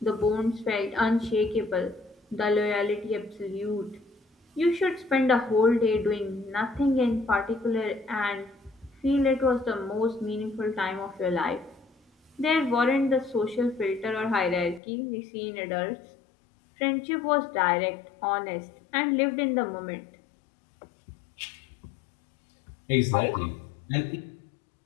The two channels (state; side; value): drops out; right; at 14.8 s